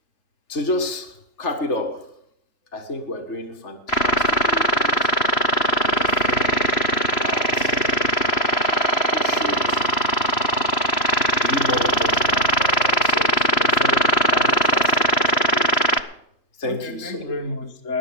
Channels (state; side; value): late; right; 3.0 ms